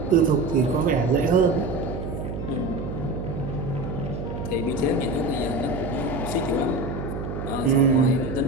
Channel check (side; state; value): right; noise; hum, 6 dB below the sound